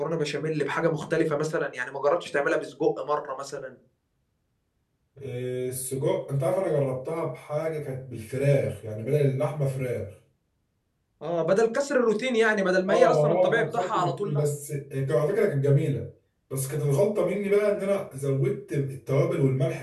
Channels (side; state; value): both; identical; correlation 1.00